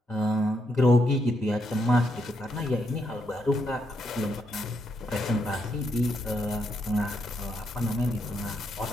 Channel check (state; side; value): normal; both; correlation 0.79